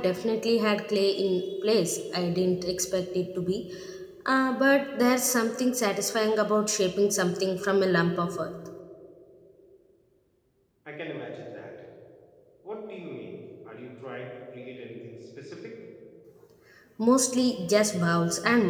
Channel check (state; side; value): identical; both; correlation 1.00